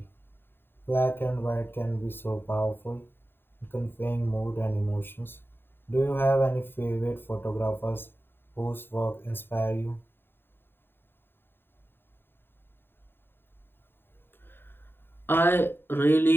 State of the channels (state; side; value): late; right; 0.10 ms